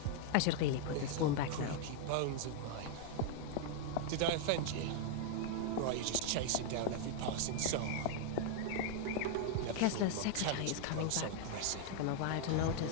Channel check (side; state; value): both; different; correlation 0.00